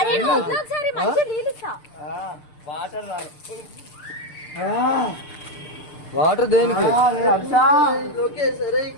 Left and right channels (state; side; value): late; right; 6.7 ms